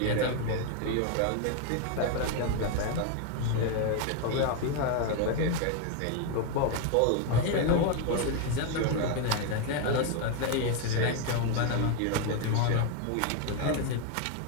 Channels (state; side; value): different; both; correlation 0.01